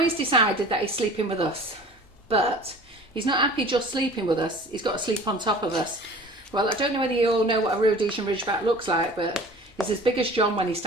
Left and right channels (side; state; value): both; normal; correlation 0.43